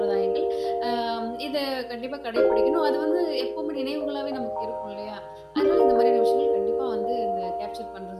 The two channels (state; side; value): identical; both; correlation 1.00